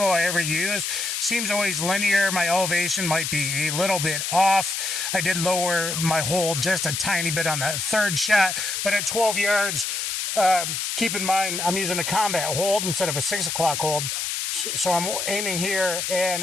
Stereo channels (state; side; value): noise; left; hiss, 2 dB below the sound